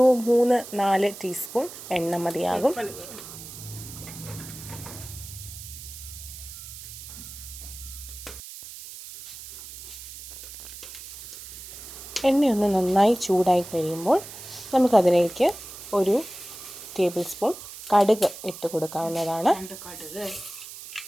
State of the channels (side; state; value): right; noise; hiss, 13 dB below the sound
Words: 3-4 ടീസ്പൂൺ എണ്ണ മതിയാകും. എണ്ണയൊന്ന് നന്നായി ചൂടായി കഴിയുമ്പോൾ നമുക്കതിലേക്ക് ഒരു ടേബിൾ സ്പൂൺ കടുക് ഇട്ട് കൊടുക്കാവുന്നതാണ്.